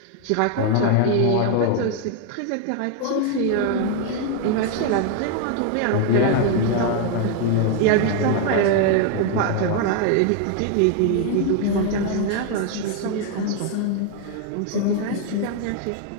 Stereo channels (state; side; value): different; both; correlation 0.00